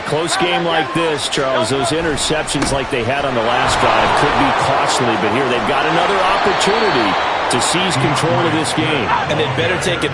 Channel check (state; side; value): identical; both; correlation 1.00